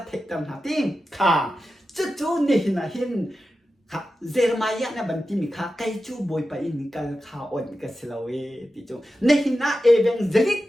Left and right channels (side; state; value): both; normal; correlation 0.92